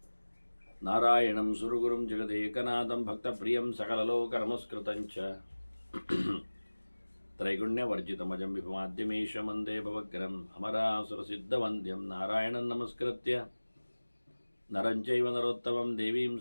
नारायणं सुरगुरुं जगदेकनाथं भक्तप्रियं सकललोकनमस्कृतं च त्रैगुण्यवर्जितमजं विभुमाद्यमीशं वन्दे भवग्रहम् अमरासुरसिद्धवन्द्यं नारायणं नमस्कृत्य नरं चैव नरोत्तमं देवीं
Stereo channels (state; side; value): inverted; both; correlation -1.00